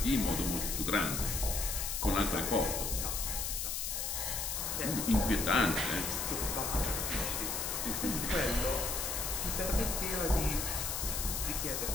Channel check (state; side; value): noise; left; hiss, 1 dB below the sound